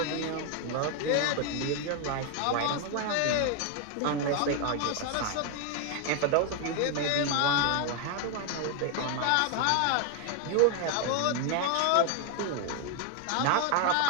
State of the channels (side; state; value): both; different; correlation 0.01